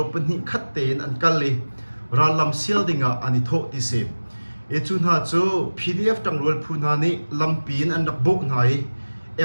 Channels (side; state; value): both; inverted; correlation -1.00